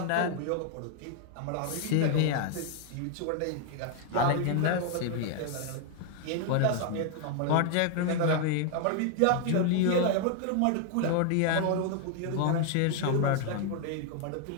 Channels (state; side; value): different; both; correlation 0.00